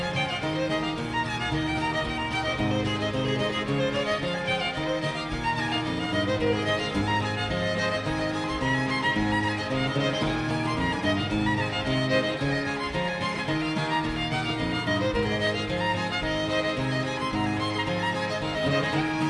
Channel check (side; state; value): both; identical; correlation 1.00